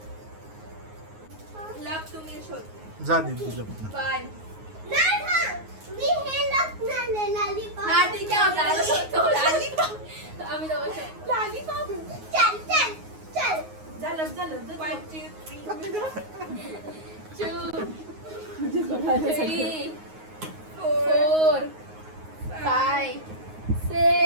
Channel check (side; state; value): left; late; 9.5 ms